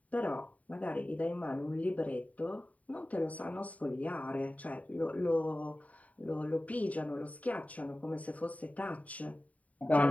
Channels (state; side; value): late; right; 0.069 ms